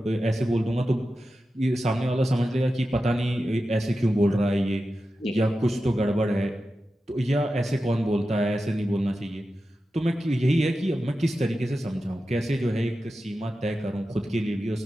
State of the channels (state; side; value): normal; both; correlation 0.92